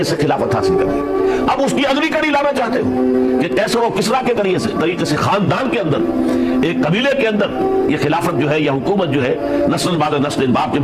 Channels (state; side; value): identical; both; correlation 1.00